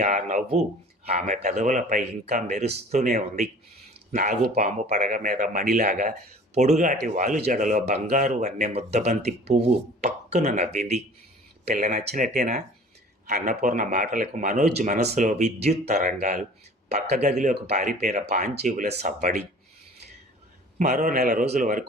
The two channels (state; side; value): normal; both; correlation 0.46